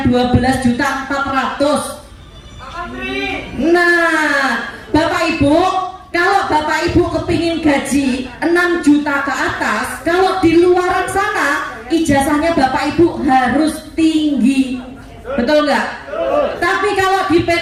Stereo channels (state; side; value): identical; both; correlation 1.00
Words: 12.400.000? Nah, Bapak Ibu, kalau Bapak Ibu kepingin gaji 6 juta ke atas, kalau di luaran sana ijazahnya Bapak Ibu harus tinggi, betul nggak? Tapi kalau di